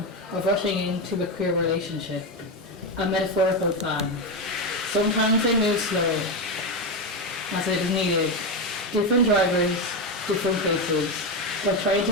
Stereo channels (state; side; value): normal; both; correlation 0.11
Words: of rushing into a queer relationship, a metaphorical fan. Sometimes they move slow, as it is needed. Different drivers, different places, but trying